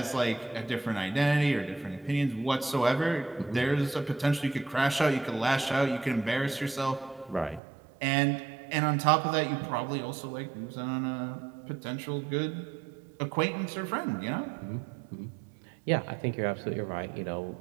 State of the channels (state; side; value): drops out; left; at 7.6 s